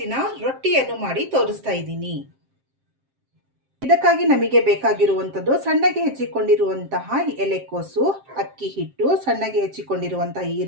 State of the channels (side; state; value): left; late; 7.6 ms